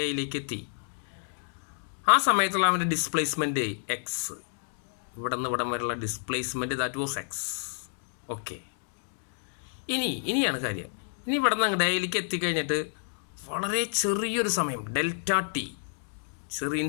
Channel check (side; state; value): right; silent; digital silence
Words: എയിലേക്ക് എത്തി. ആ സമയത്തുള്ള അവൻ്റെ ഡിസ്പ്ലേസ്മെൻറ്റ് എക്സ്. ഇവിടെ നിന്ന് ഇവിടം വരെയുള്ള displacement that was X. Okay, ഇനിയാണ് കാര്യം. ഇനി ഇവിടെ നിന്ന് അങ്ങോട്ട് എയിലേക്ക് എത്തിക്കഴിഞ്ഞിട്ട് വളരെ ചെറിയൊരു സമയം, ഡെൽറ്റ ടി,